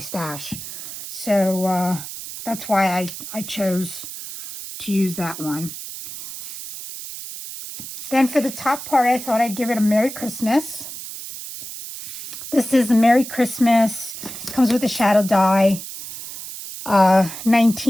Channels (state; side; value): noise; right; hiss, 10 dB below the sound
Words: So that's why I chose to use that one. Then for the top part, I thought I'd give it a Merry Christmas. This is a Merry Christmas. Comes with a shadow die,